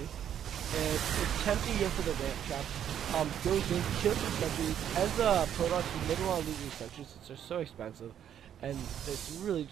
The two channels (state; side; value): quieter; left; 9.7 dB